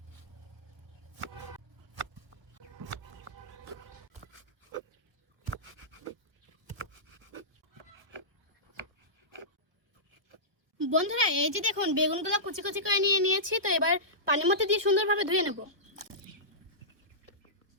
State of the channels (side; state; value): left; late; 1.3 ms